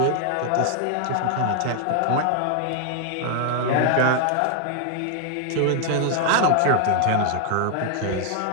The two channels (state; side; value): different; both; correlation 0.00